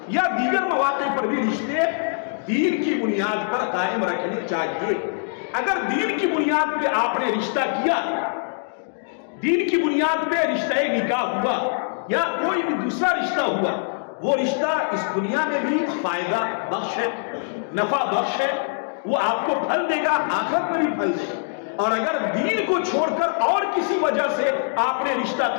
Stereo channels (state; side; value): silent; right; digital silence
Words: یا دیگر مواقع پر بھی رشتے دین کی بنیاد پر قائم رکھنے چاہیے۔ اگر دین کی بنیاد پہ آپ نے رشتہ کیا، دین کی بنیاد پہ رشتہ نکاح ہوا یا کوئی بھی دوسرا رشتہ ہوا، وہ رشتہ اس دنیا میں بھی فائدہ بخش ہے، نفع بخش ہے، وہ آپ کو پھل دے گا، آخرت میں بھی پھل دے گا۔ اور اگر دین کو چھوڑ کر اور کسی وجہ سے آپ نے رشتہ